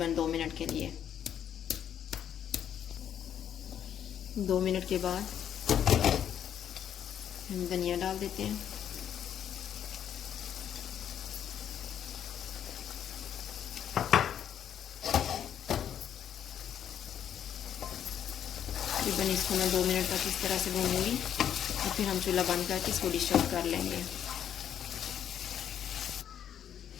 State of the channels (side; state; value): right; quieter; 9.5 dB